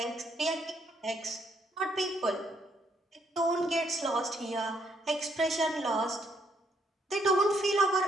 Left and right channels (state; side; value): normal; both; correlation 0.72